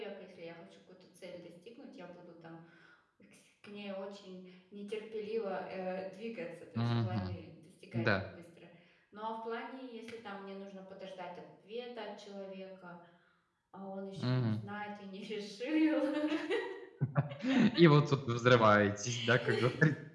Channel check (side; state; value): both; identical; correlation 1.00